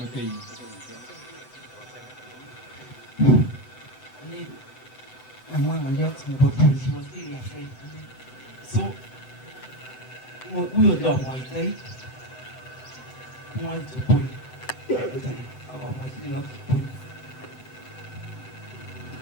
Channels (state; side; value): late; right; 7.9 ms